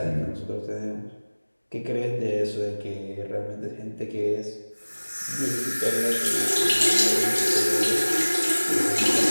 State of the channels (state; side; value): inverted; both; correlation -1.00